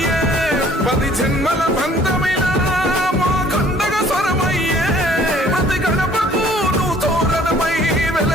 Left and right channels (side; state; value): both; normal; correlation 0.56